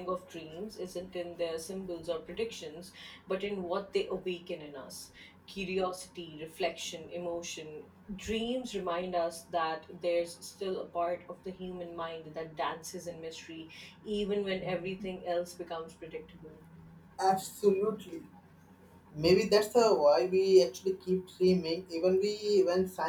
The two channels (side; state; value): both; identical; correlation 1.00